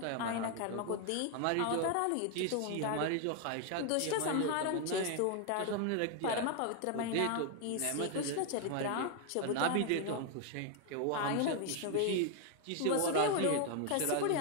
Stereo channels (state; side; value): different; both; correlation 0.01